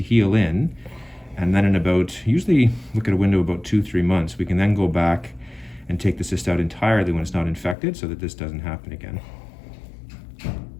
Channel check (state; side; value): drops out; right; at 7.8 s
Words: heal in, and then in about, usually look at a window about 2-3 months, we can then go back and take the cyst out entirely when it's not infected so that this doesn't happen again.